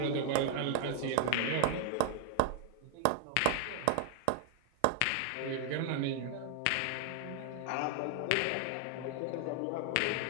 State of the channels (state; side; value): different; both; correlation 0.00